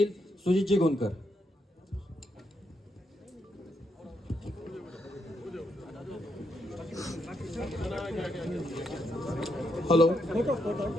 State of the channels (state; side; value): normal; both; correlation 0.79